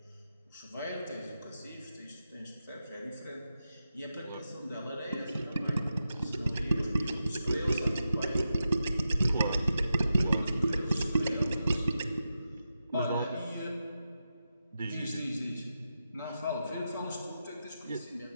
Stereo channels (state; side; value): inverted; both; correlation -0.89